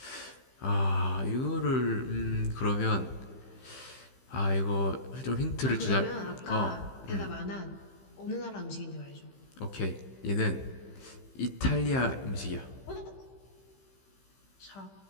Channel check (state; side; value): late; right; 15 ms